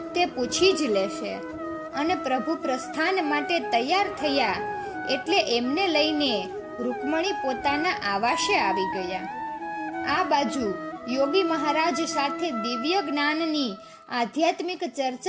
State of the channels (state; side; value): identical; both; correlation 1.00